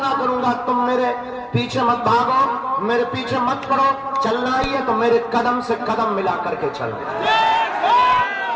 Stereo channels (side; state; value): both; identical; correlation 1.00